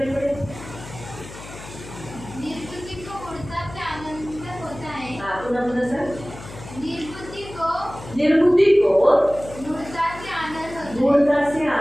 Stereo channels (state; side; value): noise; left; hum, 15 dB below the sound